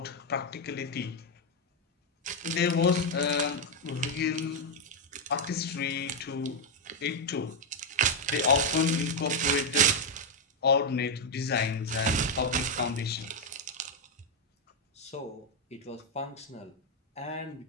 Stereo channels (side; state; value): both; normal; correlation 0.03